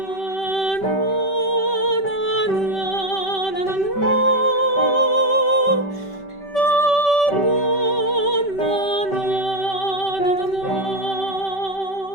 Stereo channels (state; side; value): late; right; 5.2 ms